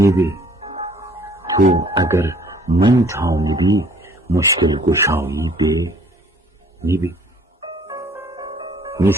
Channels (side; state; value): both; normal; correlation 0.56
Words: تو اگر من تامدی مشکل گشایی به نیبه.